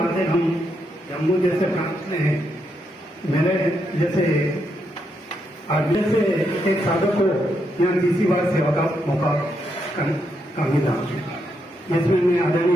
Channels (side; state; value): both; normal; correlation 0.80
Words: है। हम जम्मू जैसे प्रांत में मेरे जैसे आगे से एक साधक को यहाँ तीसरी बार सेवा का मौका मिला, जिसमें मैं